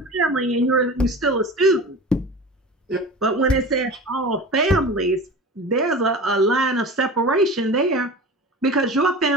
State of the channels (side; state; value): both; normal; correlation 0.34